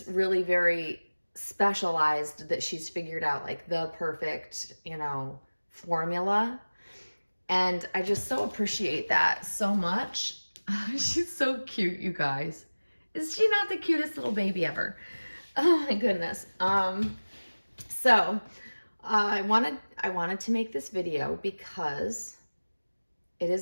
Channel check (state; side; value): inverted; both; correlation -1.00